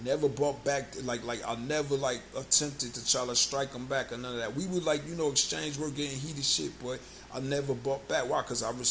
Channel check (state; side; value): identical; both; correlation 1.00